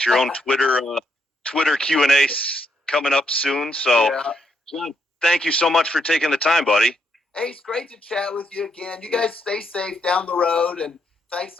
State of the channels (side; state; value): both; normal; correlation 0.76